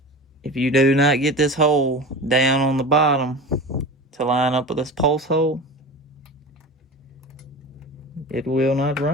If you do not get this hole down on the bottom to line up with this pulse hole, it will not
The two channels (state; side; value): normal; both; correlation 0.32